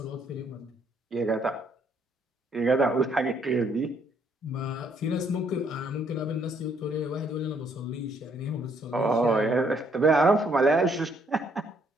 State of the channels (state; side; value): normal; both; correlation 0.68